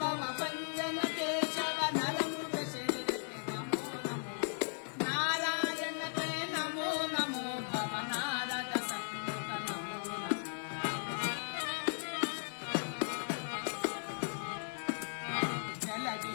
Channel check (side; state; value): right; silent; digital silence